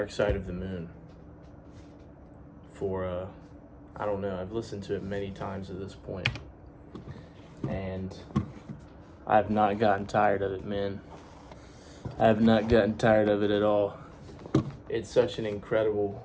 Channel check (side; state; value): both; identical; correlation 1.00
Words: Side of the Moon for, I don't know, I've listened to it many times at this point, and I have not gotten tired of it, man. I have not gotten tired of it at all. It's such an incredible